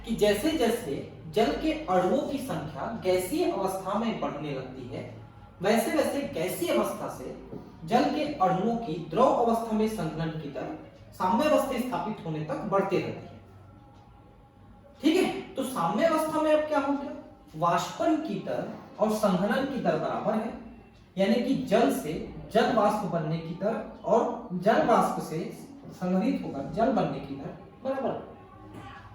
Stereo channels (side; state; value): both; identical; correlation 1.00